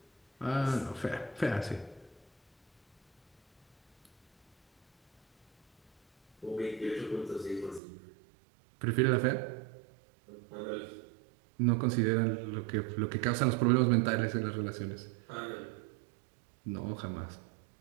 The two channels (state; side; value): drops out; left; at 7.8 s